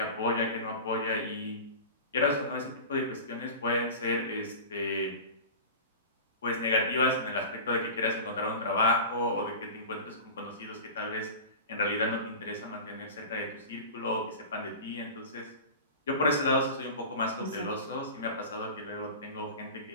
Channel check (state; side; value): inverted; both; correlation -0.33